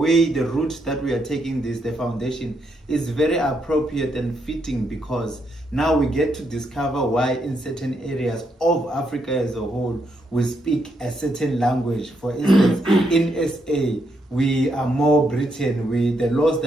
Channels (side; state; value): both; normal; correlation 0.78